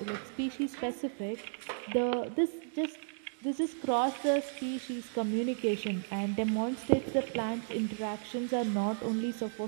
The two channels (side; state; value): left; silent; digital silence